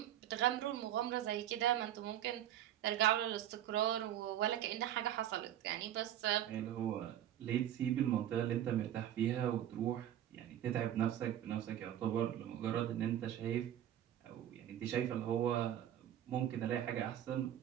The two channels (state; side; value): quieter; left; 11.5 dB